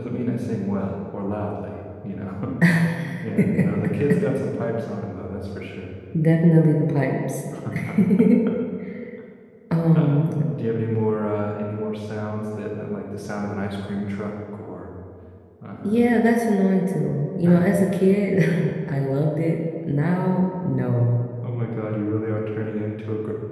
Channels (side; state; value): both; identical; correlation 1.00